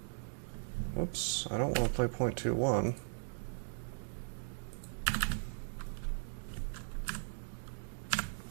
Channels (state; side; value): silent; left; digital silence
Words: Oops, I don't want to play 0.21.